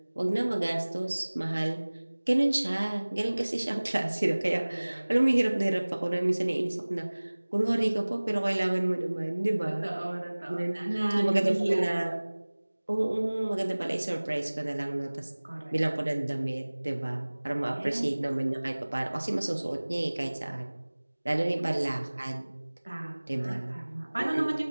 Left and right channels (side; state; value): both; inverted; correlation -1.00